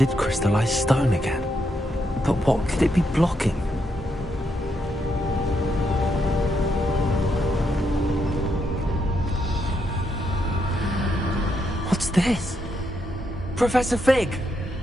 crystallized stone again. But what could it be blocking? What's this? Professor Fig!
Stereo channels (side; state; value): both; normal; correlation 0.79